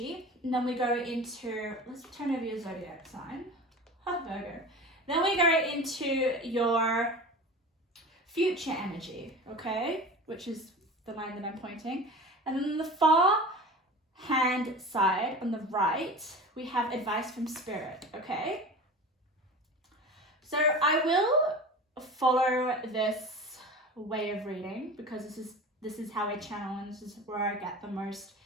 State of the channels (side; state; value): both; normal; correlation 0.34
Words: And then we go into, let's turn over your zodiac sign. Virgo. Then we go into your future energy, okay? Which is the line that I'm pointing. And then on the far hand side, on the right, we have advice from spirit, okay? So I will follow this way of reading because this is how I channel, and this is where I get the most